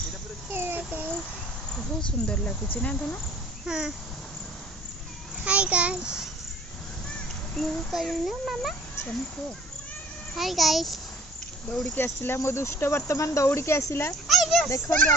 बहुत सुंदर लगुच ना धन। हाँ हाय गाइस मु करूनु मामा चल को हाय गाइस दौड़ी के आसिला मो दुष्ट वर्तमान दौड़ी के आसिला देखंतु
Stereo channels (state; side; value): normal; both; correlation 0.51